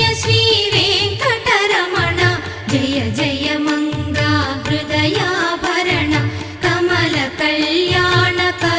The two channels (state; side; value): identical; both; correlation 1.00